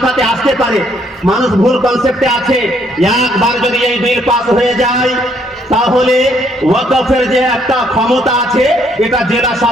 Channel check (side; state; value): both; normal; correlation 0.68